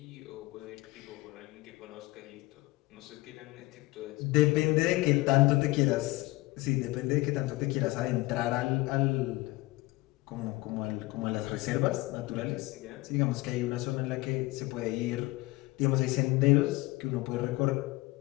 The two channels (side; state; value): right; quieter; 21.3 dB